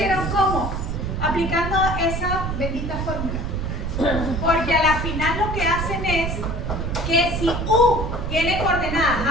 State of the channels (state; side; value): noise; right; rumble, 3 dB below the sound